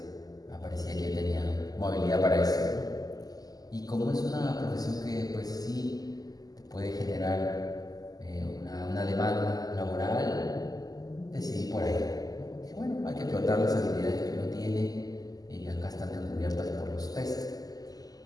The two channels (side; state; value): right; late; 0.18 ms